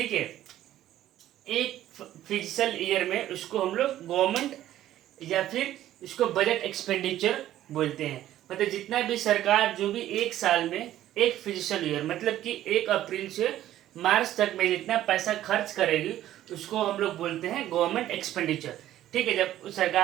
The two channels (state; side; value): quieter; left; 13.1 dB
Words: है, एक फिजिकल ईयर में उसको हम लोग गवर्नमेंट या फिर इसको बजट एक्सपेंडिचर बोलते हैं। मतलब जितना भी सरकार जो भी एक साल में एक फिजिकल ईयर मतलब कि 1 अप्रैल से मार्च तक में जितना पैसा खर्च करेगी उसको हम लोग बोलते हैं गवर्नमेंट एक्सपेंडिचर। ठीक है, जब